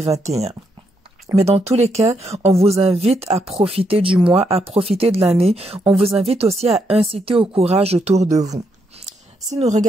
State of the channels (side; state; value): both; normal; correlation 0.78